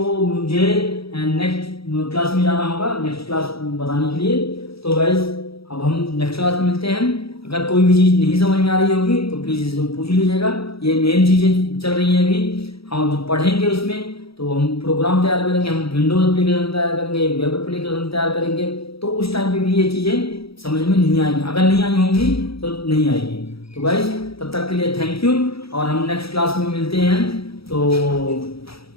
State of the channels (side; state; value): right; late; 0.76 ms